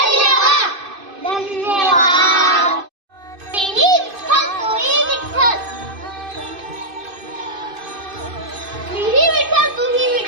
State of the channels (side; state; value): left; late; 2.5 ms